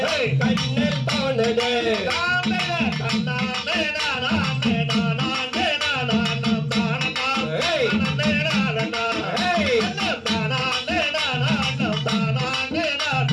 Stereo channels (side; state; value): both; identical; correlation 1.00